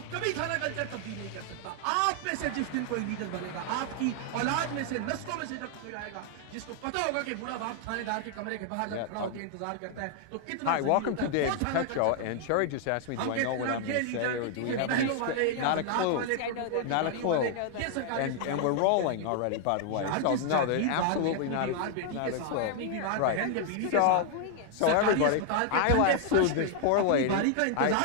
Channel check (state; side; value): different; both; correlation 0.00